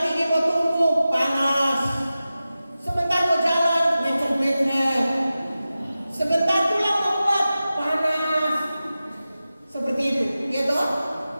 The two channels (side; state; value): both; inverted; correlation -0.94